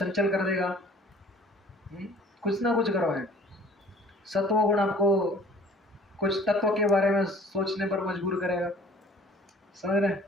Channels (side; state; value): both; normal; correlation 0.52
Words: कर देगा, कुछ ना कुछ करवाएंगे। सत्वगुण आपको कुछ तत्व के बारे में सोचने पर मजबूर करेगा। समझ रहे?